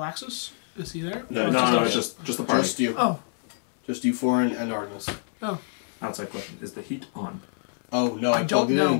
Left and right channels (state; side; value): silent; right; digital silence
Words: Is he there? No, it's just the party. Just you. Oh. Just you four and Artemis. Outside question: is the heat on? Oh no, I I plugged it don't in and